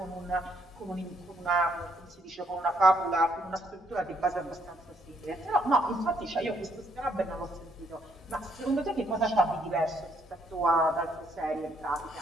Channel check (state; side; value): normal; both; correlation 0.71